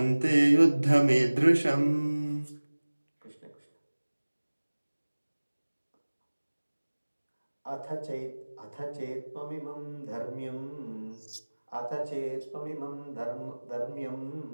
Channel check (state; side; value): inverted; both; correlation -1.00